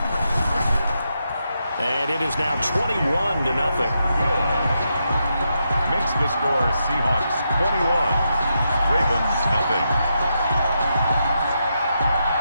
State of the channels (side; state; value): both; inverted; correlation -0.83